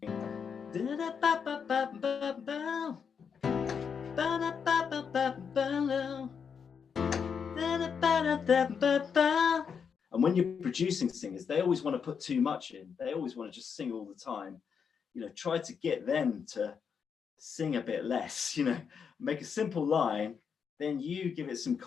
And when you're producing singers, they always want to put too much in. They always want to just sing all the time. You know, try to get them to sing a bit less, you know, make a simple line, then you give it some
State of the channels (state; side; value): quieter; right; 6.6 dB